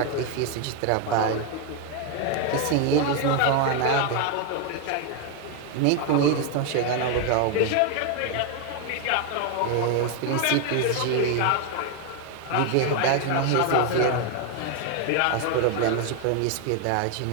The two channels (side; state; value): both; different; correlation 0.01